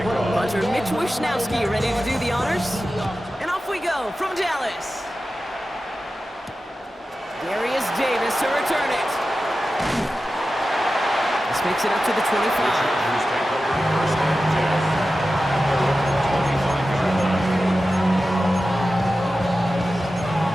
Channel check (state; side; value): normal; both; correlation 0.93